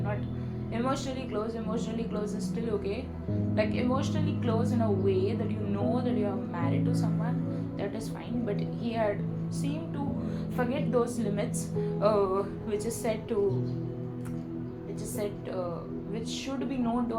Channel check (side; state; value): both; identical; correlation 1.00